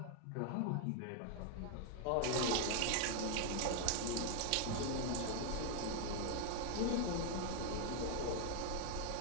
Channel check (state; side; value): different; both; correlation 0.00